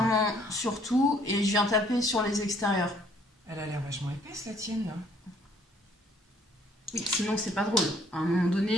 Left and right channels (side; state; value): both; normal; correlation 0.62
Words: sur tout et je viens taper sur les extérieurs. Elle a l'air vachement épaisse, la tienne, là. Oui, sinon c'est pas drôle. À un moment